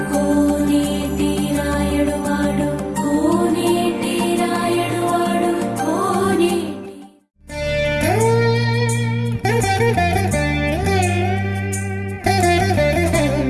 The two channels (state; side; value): identical; both; correlation 1.00